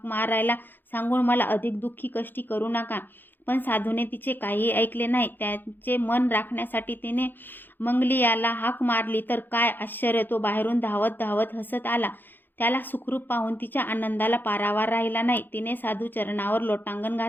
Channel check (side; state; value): right; late; 0.093 ms